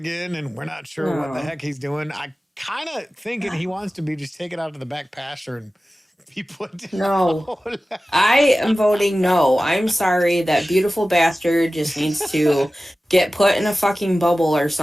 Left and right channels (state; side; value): normal; both; correlation 0.96